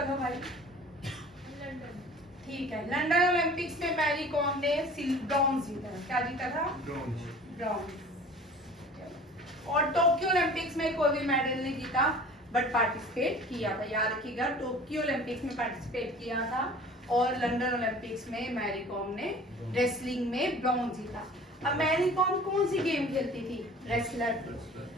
लो भाई। ठीक है, लंदन ओलंपिक्स में मैरी कॉम ने ब्रॉन्ज जीता। क्या जीता था? ब्रॉन्ज। और टोक्यो ओलंपिक्स में कोई भी मेडल नहीं जीता, बट पार्टिसिपेट किया था। याद रखिएगा, टोक्यो ओलंपिक्स में पार्टिसिपेट किया था और लंदन ओलंपिक्स में मैरी कॉम ने रेसलिंग में ब्रॉन्ज जीता। अब मैरी कॉम कौन सी गेम खेलती थी? रेसलर थी।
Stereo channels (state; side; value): normal; both; correlation 0.45